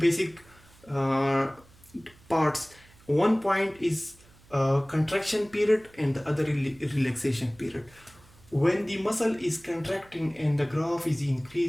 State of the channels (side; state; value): right; noise; hum, 27 dB below the sound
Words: parts. One point is contraction period and the other relaxation period. When the muscle is contracting and the graph is